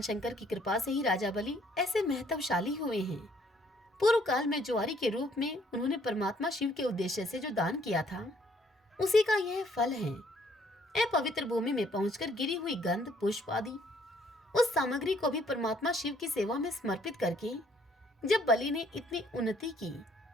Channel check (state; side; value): normal; both; correlation 0.64